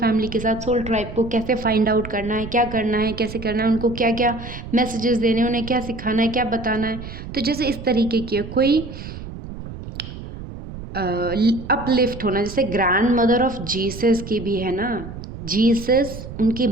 के साथ, सोल ट्राइब को कैसे फाइंड आउट करना है, क्या करना है, कैसे करना है, उनको क्या क्या मैसेजेस देने हैं, उन्हें क्या सिखाना है, क्या बताना है। तो जैसे इस तरीके की कोई अपलिफ्ट होना, जैसे ग्रैंड मदर ऑफ जीसस की भी है ना, जीसस उनकी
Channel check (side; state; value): right; noise; rumble, 11 dB below the sound